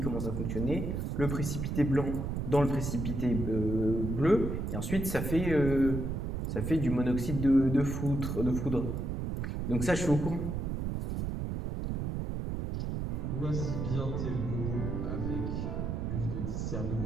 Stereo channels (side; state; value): right; noise; rumble, 2 dB below the sound